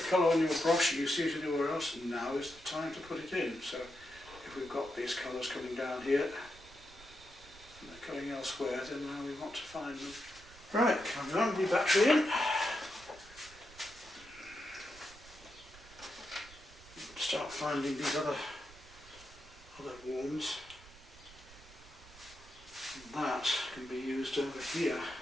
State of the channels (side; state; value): right; noise; rumble, 21 dB below the sound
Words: on your brush and you see it anywhere else, now is the time to put it in. So if we've got these colours coming down here and they're going elsewhere, then now we want to find them. Right, coming on, the battery in. Start finding these other warms. And that can be used over here